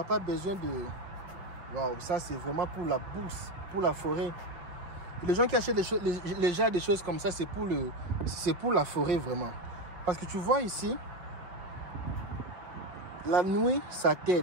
pas besoin de... Waouh, ça, c'est vraiment pour la bourse, pour la forêt. Les gens qui achètent les gens des choses comme ça, c'est pour la forêt, vraiment. Parce que tu vois ici, la nuit, ça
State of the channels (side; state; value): left; late; 5.1 ms